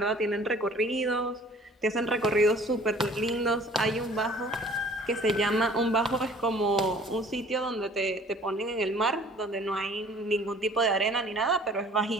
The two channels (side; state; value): both; normal; correlation 0.52